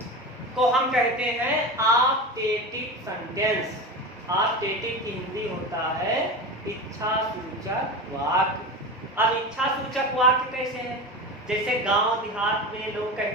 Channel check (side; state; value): both; normal; correlation 0.26